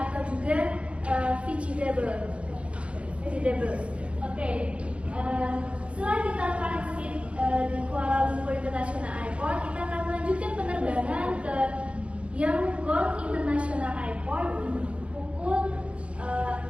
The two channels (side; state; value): left; late; 0.061 ms